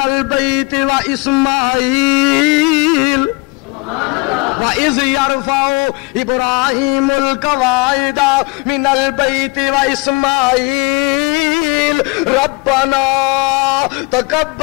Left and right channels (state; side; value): quieter; right; 26.7 dB